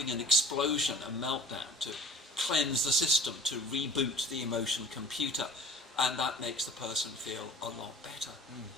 an explosion, a meltdown, to cleanse the system, to reboot the emotion computer, and that makes the person feel a lot better.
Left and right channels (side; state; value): both; normal; correlation 0.44